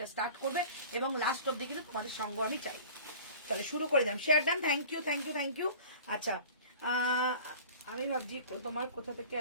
স্টার্ট করবে, এবং লাস্ট অব্দি কিন্তু তোমাদের সঙ্গ আমি চাই। তাহলে শুরু করে দিলাম, share done, thank you thank you thank you. আচ্ছা, আমি ভাবছি তোমার কোথা থেকে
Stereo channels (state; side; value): inverted; both; correlation -0.44